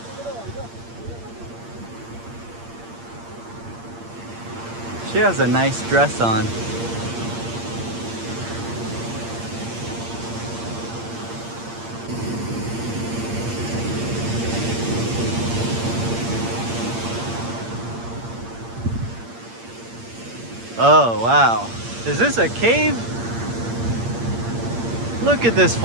She has a nice dress on. Oh, wow. Is this a cave? Look at this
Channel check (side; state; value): left; late; 8.7 ms